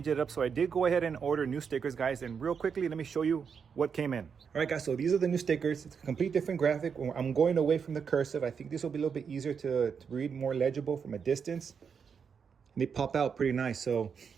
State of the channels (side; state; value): left; quieter; 6.5 dB